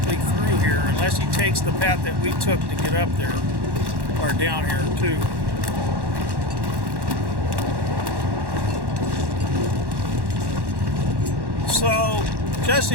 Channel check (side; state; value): left; late; 1.1 ms